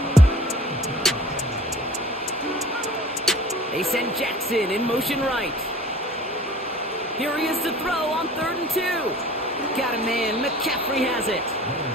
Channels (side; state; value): both; normal; correlation 0.45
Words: They send Jackson in motion right. Here he is to throw on 3rd and 2. Got a man. McCaffrey has it.